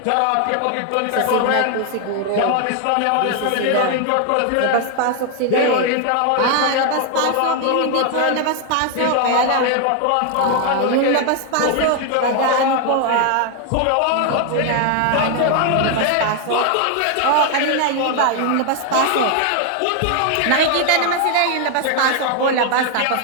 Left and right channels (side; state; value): both; different; correlation 0.00